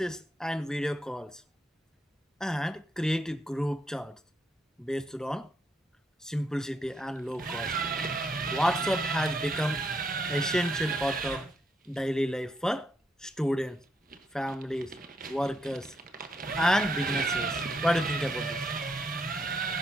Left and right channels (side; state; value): both; normal; correlation 0.77